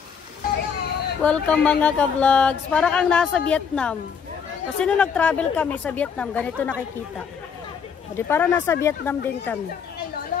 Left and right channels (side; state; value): right; quieter; 6.7 dB